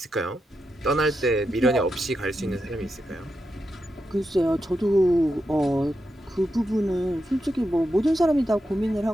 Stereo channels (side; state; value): both; normal; correlation 0.86